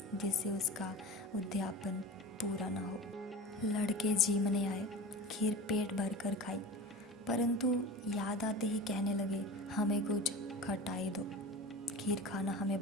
जिससे उसका उद्यापन पूरा ना हो। लड़के जीमने आए, खीर पेट भर कर खाई, परंतु याद आते ही कहने लगे, हमें कुछ खटाई दो। खीर खाना हमें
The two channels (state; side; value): normal; both; correlation 0.33